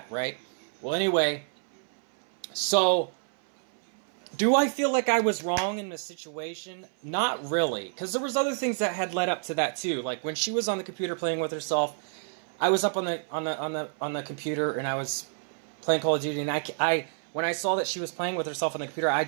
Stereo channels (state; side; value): silent; left; 59 dB below the other